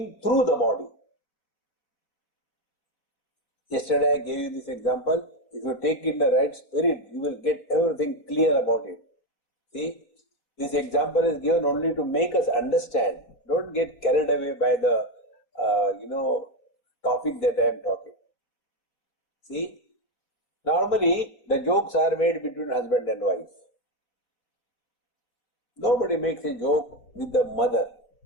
through the body. Yesterday I gave you this example. If you take in the right spirit, you will get everything clear about it. See, this example is given only to make us understand. Don't get carried away by the, topic that I am talking. See, normally the jokes are made between husband and wife. Nobody makes a joke with the mother.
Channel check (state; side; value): late; right; 4.6 ms